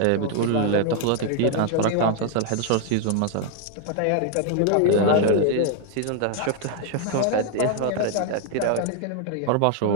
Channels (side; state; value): both; different; correlation 0.00